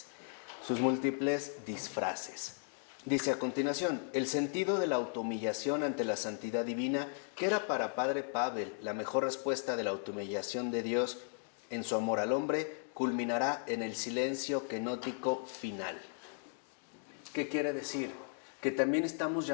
sus múltiples disfraces. Dice a continuación, el sentido de la autohumillación ante la santidad divina, que era para Padre Pavel la mejor respuesta de la autohumillación de Dios en su amor al hombre, culminará en el silencio kenótico final. ¿Qué quiere decir? Que también estamos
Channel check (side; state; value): right; silent; 54 dB below the other